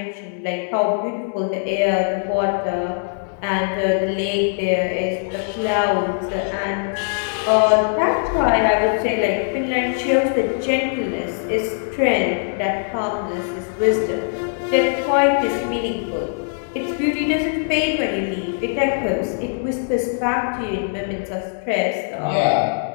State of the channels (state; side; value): silent; right; digital silence